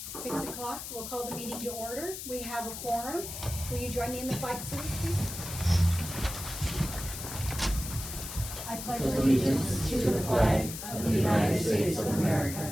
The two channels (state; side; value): noise; left; hiss, 8 dB below the sound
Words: 6 o'clock, we'll call the meeting to order. We have a quorum. Will you join me in the flag salute, please? I pledge Allegiance to the flag of the United States of America